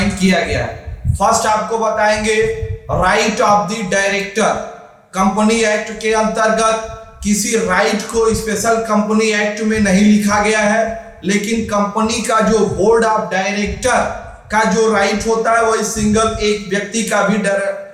किया गया है। फर्स्ट आपको बताएंगे right of the director. Company act के अंतर्गत किसी राइट को स्पेशल कंपनी एक्ट में नहीं लिखा गया है, लेकिन कंपनी का जो बोर्ड ऑफ डायरेक्टर का जो राइट होता है वही सिंगल एक व्यक्ति का भी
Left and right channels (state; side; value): identical; both; correlation 1.00